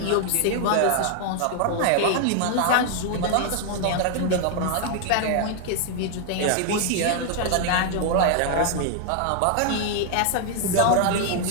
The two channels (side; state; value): both; different; correlation 0.00